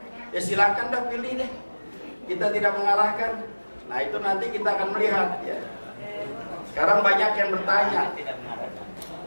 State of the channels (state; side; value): inverted; both; correlation -1.00